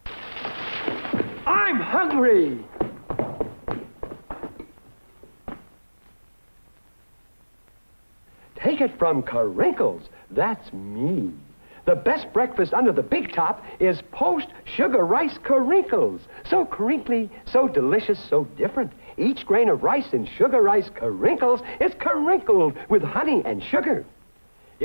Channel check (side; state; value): both; inverted; correlation -1.00